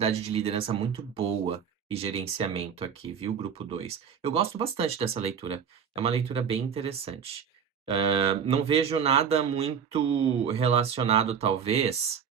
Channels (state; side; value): quieter; left; 7.3 dB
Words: de liderança muito boa e gerenciamento aqui, viu, grupo 2. Eu gosto bastante dessa leitura. É uma leitura bem interessante. Não vejo nada muito relacionado, talvez,